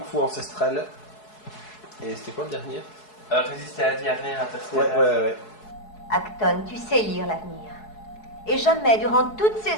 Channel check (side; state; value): right; late; 4.7 ms